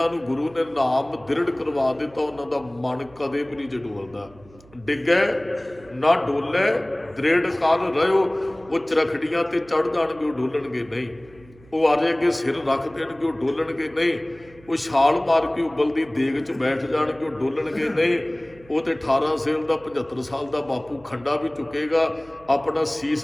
ਨੂੰ ਗੁਰੂ ਨੇ ਨਾਮ ਦ੍ਰਿੜ ਕਰਵਾ ਦਿੱਤਾ ਉਹਨਾਂ ਦਾ ਮਨ ਕਦੇ ਵੀ ਨਹੀਂ ਡੋਲਦਾ। ਡਿੱਗੇ ਨਾ ਡੋਲੇ, ਦ੍ਰਿੜ ਕਰ ਰਹਿਓ। ਉਹ ਚਰਖੜੀਆਂ ਤੇ ਚੜ੍ਹ ਜਾਣਗੇ, ਉਹ ਡੋਲਣਗੇ ਨਹੀਂ। ਉਹ ਆਰੇ ਅੱਗੇ ਸਿਰ ਰੱਖ ਦੇਣਗੇ, ਉਹ ਡੋਲਣਗੇ ਨਹੀਂ। ਉਹ ਛਾਲ ਮਾਰ ਕੇ ਉਬਲਦੀ ਦੇਗ 'ਚ ਬੈਠ ਜਾਣਗੇ, ਉਹ ਡੋਲਣਗੇ ਨਹੀਂ। ਉਹ ਤੇ 18 ਸੇਲ ਦਾ 75 ਸਾਲ ਦਾ ਬਾਪੂ ਖੰਡਾ ਵੀ ਚੁੱਕੇਗਾ, ਆਪਣਾ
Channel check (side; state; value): right; noise; hum, 25 dB below the sound